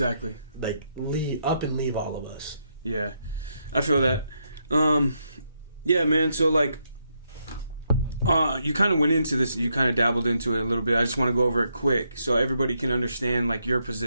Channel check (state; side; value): inverted; both; correlation -0.78